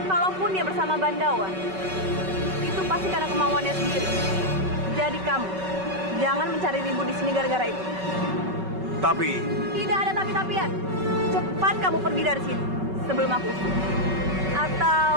Kalaupun dia bersama Bandawa, itu pasti karena kemauannya sendiri. Jadi kamu, jangan mencari ribut di sini gara-gara itu. Tapi... Tidak ada tapi-tapian. Cepat kamu pergi dari sini sebelum aku usir. Atau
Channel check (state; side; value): late; left; 5.3 ms